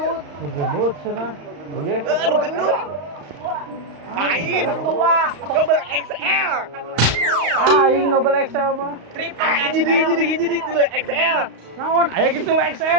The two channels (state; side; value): late; left; 35 ms